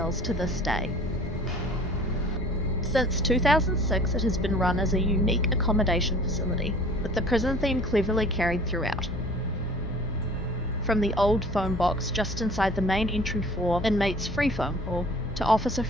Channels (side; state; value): both; normal; correlation 0.48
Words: to this day. Since 2006, it has been run as a unique accommodation facility, with the prison theme cleverly carried throughout. From the old phone box just inside the main entry for Inmate's free phone call, to Officer